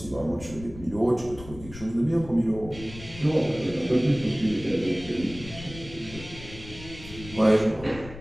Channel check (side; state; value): left; noise; rumble, 15 dB below the sound